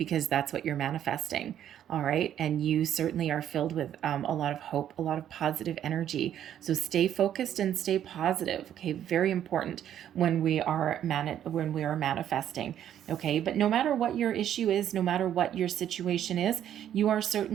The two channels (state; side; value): quieter; left; 10.5 dB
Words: that's what you're manifesting. All right, and you certainly are filled with a lot of hope, a lot of positive energy. So stay focused and stay positive. Okay, very important when we are manifesting. Okay, but no matter what your issue is, no matter what your situation is, you are